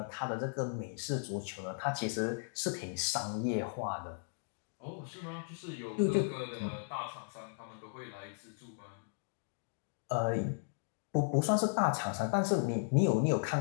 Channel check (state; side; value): silent; right; digital silence